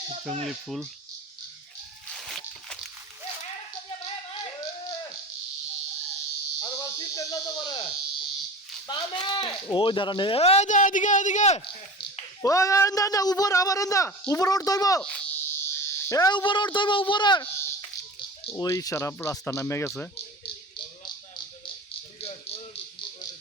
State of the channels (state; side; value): normal; both; correlation 0.34